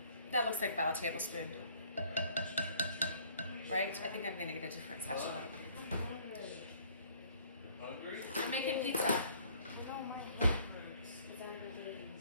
that looks like about a tablespoon, right? I think I'm gonna get a different sachet. I'm making pizza.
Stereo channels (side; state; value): both; inverted; correlation -0.58